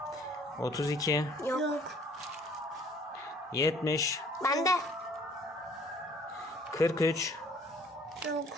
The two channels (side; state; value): both; normal; correlation 0.56